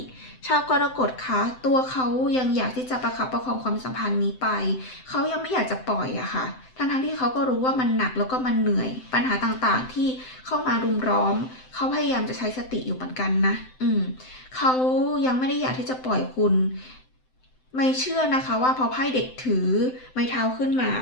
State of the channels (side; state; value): right; late; 7.8 ms